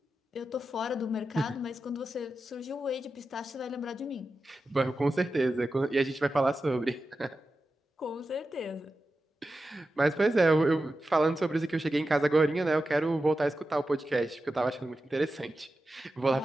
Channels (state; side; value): normal; both; correlation 0.92